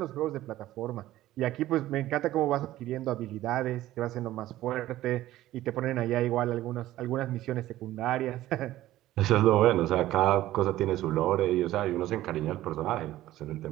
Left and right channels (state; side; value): quieter; left; 14.9 dB